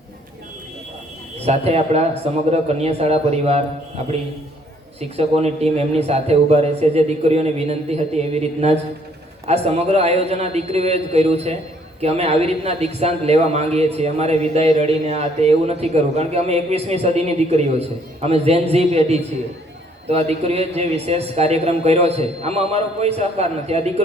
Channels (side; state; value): both; normal; correlation 0.64